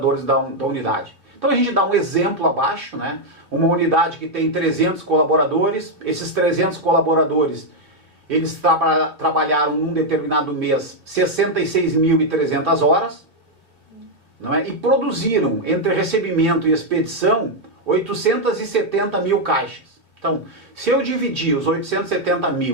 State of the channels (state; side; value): late; left; 2.9 ms